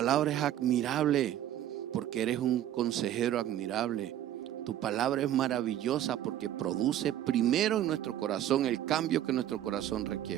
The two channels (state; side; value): quieter; left; 11.9 dB